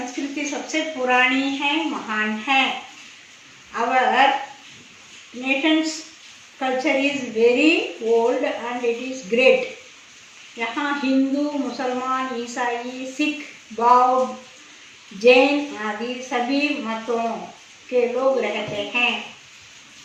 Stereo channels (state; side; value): identical; both; correlation 1.00